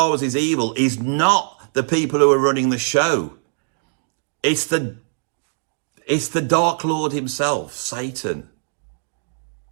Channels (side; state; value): left; silent; digital silence